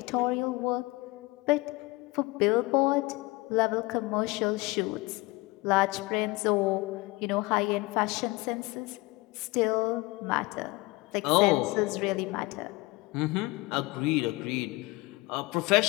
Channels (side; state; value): right; quieter; 22.9 dB